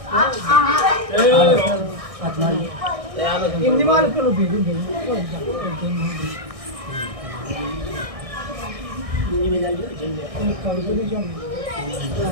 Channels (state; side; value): late; left; 1.6 ms